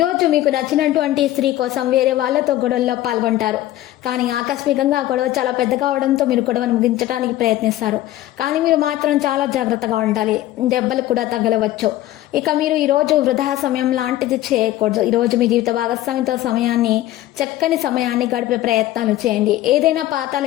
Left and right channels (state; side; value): quieter; right; 14.6 dB